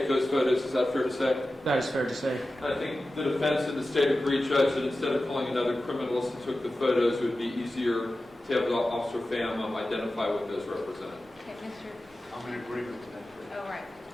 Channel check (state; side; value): normal; both; correlation 0.94